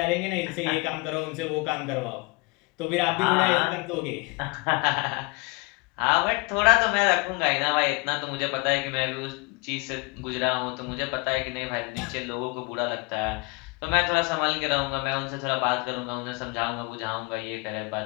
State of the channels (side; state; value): right; quieter; 27.4 dB